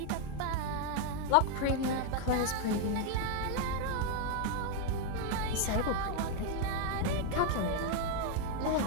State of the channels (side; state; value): both; different; correlation 0.00